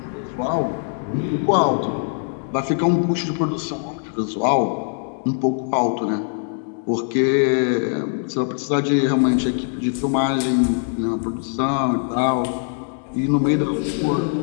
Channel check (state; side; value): silent; right; 64 dB below the other